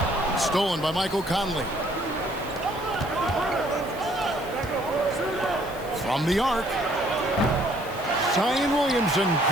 Stolen by Michael Conley. From the arc. Zion Williamson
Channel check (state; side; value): noise; right; hiss, 20 dB below the sound